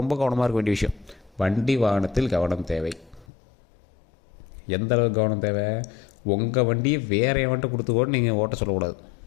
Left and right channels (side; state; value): right; drops out; at 3.2 s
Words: ரொம்ப கவனமாக இருக்க வேண்டிய விஷயம். வண்டி வாகனத்தில் கவனம் தேவை. எந்த அளவுக்கு கவனம் தேவை, உங்கள் வண்டியை வேறு எவன்ட்டு கொடுத்து கூட நீங்கள் ஓட்ட சொல்லக்கூடாது.